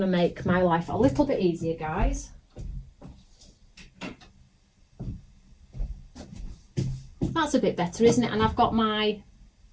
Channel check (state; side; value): identical; both; correlation 1.00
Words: to make my life a little bit easier, guys. That's a bit better, isn't it? And I've got my